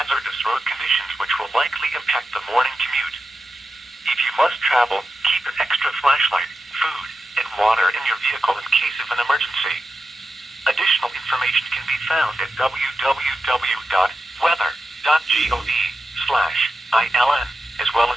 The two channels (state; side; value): normal; both; correlation 0.90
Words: road conditions which will likely impact the morning commute. If you must travel, keep an extra flashlight, food, and water in your vehicle in case of an emergency. Additional information can be found at www.weather.gov/ILN, as well